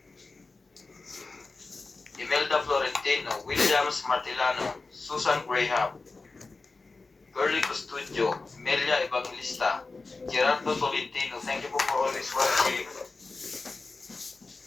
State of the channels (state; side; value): quieter; right; 3.7 dB